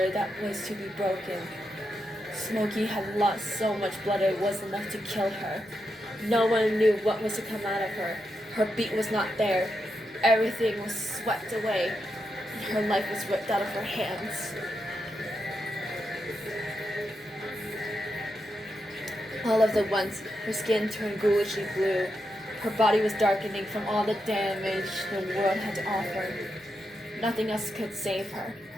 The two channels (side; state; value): both; normal; correlation 0.85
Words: that was to be broken. Smokey had lost so much blood it was enough to kill her. No one knew what was to come out of her. Her beat was not there. Everything was swept away, and her life was ripped out of her hands. All of the once, her skin turned ghoulishly blue. Her body was darkening from all the damage the world had to offer. Nothing else could save her.